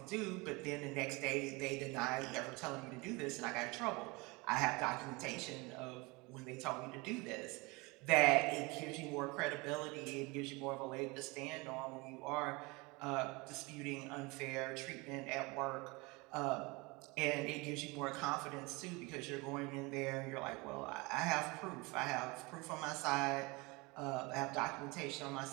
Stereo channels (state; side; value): quieter; left; 25.7 dB